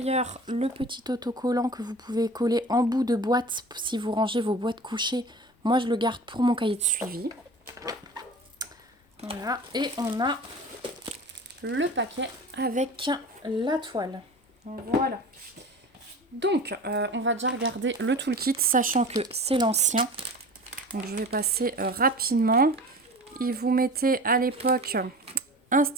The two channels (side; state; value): both; normal; correlation 0.37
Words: le petit autocollant que vous pouvez coller en bout de boîte si vous rangez vos boîtes couchées. Moi, je le garde pour mon cahier de suivi. Voilà. Et on a le paquet avec la toile. Voilà. Donc, on va déjà regarder le toolkit, sachant que c'est l'ancien. Donc, je vais passer rapidement. Il vous mettait à l'époque un